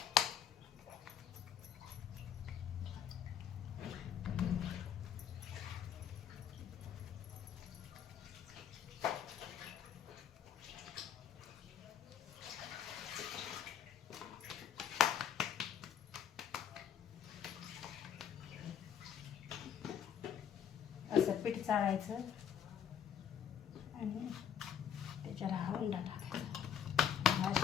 असं पीठ चाळायचं आणि त्याच्याला हा उंडा टाकायचा.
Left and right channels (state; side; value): quieter; right; 8.6 dB